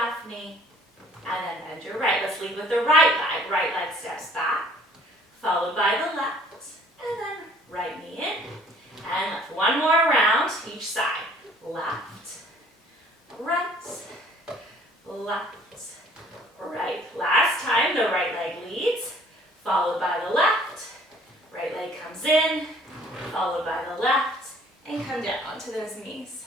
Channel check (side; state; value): both; normal; correlation 0.56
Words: knee. And then bend your right. Let's lead with the right leg. Right leg steps back, followed by the left. And then right knee in. And left. One more round each side. Left, right, left, right. Last time, the right leg leads, followed by the left. Right leg comes in, followed by the left. And come down onto those knees.